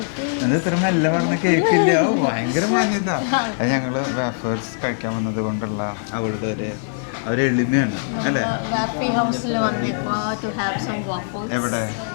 അത് ഇത്ര മെല്ലെ പറഞ്ഞ കേക്കില്ല, ഭയങ്കര മാന്യത. അത് ഞങ്ങൾ വേഫേഴ്സ് കഴിക്കാൻ വന്നത് കൊണ്ടുള്ള അവളുടെ ഒരു എളിമയാണ് അല്ലേ? എവിടെ?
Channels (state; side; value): silent; right; 65 dB below the other